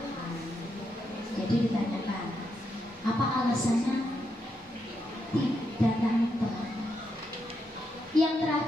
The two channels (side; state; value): both; normal; correlation 0.82